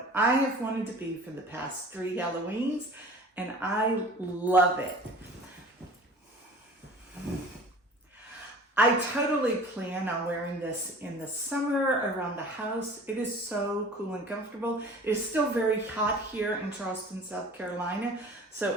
I have wanted to be for the past 3 Halloweens, and I love it. I totally plan on wearing this in the summer around the house. It is so cool and comfortable. It is still very hot here in Charleston, South Carolina.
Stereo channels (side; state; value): both; normal; correlation 0.44